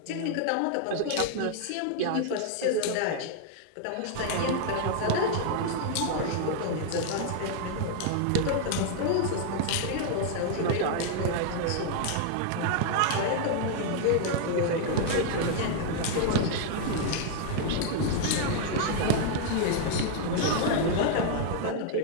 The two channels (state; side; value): different; both; correlation 0.00